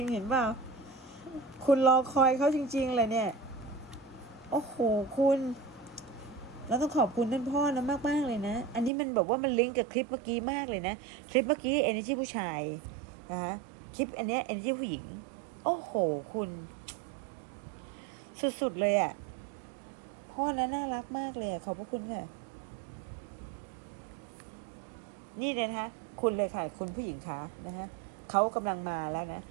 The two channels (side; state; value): left; drops out; at 8.9 s